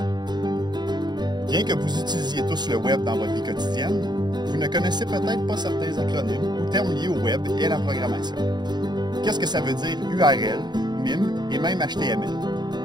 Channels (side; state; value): left; late; 0.21 ms